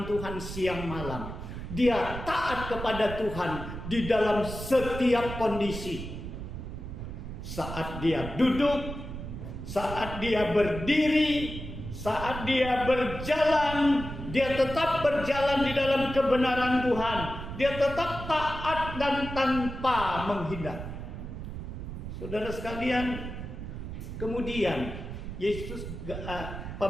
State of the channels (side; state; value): right; noise; rumble, 8 dB below the sound